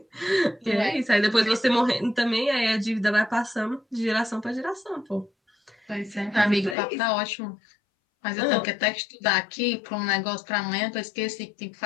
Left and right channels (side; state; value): right; drops out; at 6.8 s